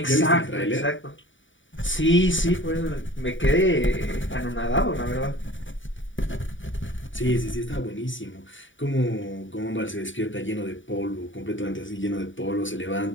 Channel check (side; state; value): right; late; 0.56 ms